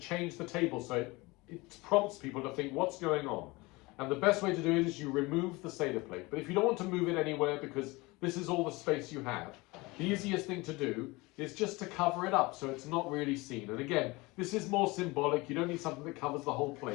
the table so it prompts people to think what's going on. And the best way to do it is you remove the Seder plate. But if you don't want to move it anywhere because this is all the space you have, the easiest thing to do is just to cover it up so it's not really seen. And again, this is more symbolic. You don't need something that covers the whole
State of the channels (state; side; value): quieter; right; 23.3 dB